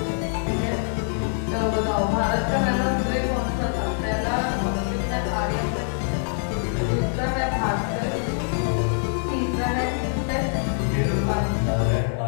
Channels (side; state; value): right; silent; 62 dB below the other